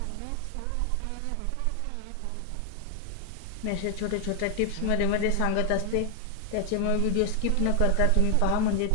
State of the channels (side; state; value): both; different; correlation 0.00